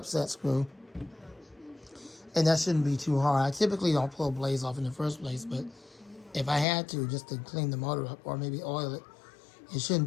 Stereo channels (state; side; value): drops out; right; at 6.7 s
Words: set screw. And that shouldn't be too hard. I typically don't pull blades off in the first place, but if I had to, just to clean the motor up or maybe oil it, it shouldn't